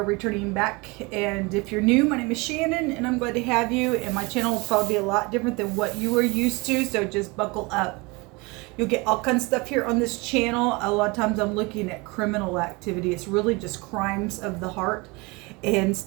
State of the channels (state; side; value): quieter; left; 26.2 dB